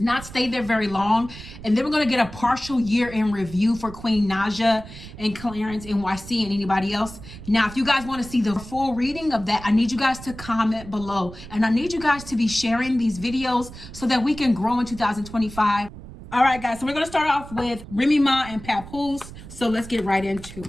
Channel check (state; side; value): noise; right; rumble, 15 dB below the sound